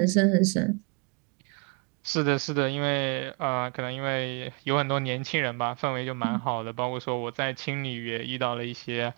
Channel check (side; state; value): left; quieter; 34.7 dB